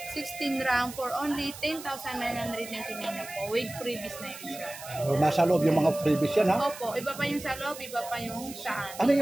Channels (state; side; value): noise; right; hiss, 13 dB below the sound